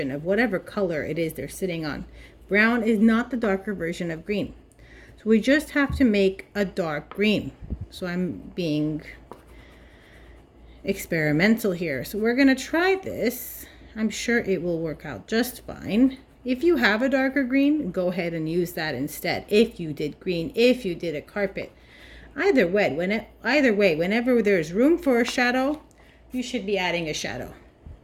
of whatever color it is they're sitting on. Brown is not the darker version of green. So we just have to make a dark green. So I'm being experimental here. So we're going to try this. I'm sure it will work out just fine. If you have a darker green, go ahead and use that instead. If you did green, if you did a carpet. Either way, whenever there's room for a shadow, you should be adding a shadow.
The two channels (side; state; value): both; identical; correlation 1.00